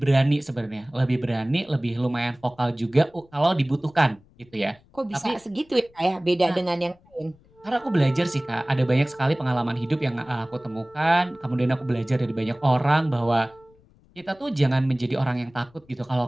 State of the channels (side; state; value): left; noise; rumble, 30 dB below the sound